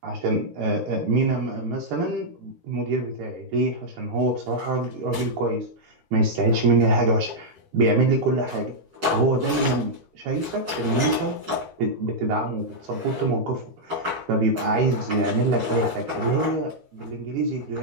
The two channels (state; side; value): late; left; 13 ms